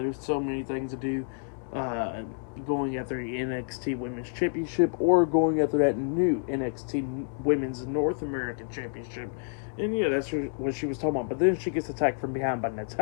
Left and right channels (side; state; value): right; silent; digital silence